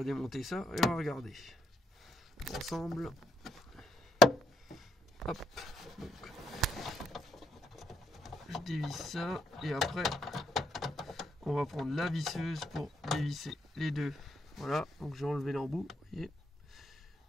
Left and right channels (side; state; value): both; normal; correlation 0.75